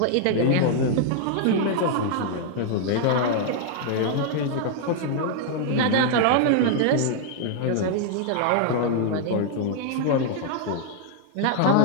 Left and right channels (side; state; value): both; different; correlation 0.00